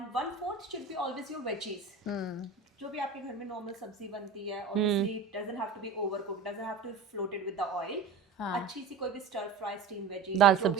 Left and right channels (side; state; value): left; quieter; 5.1 dB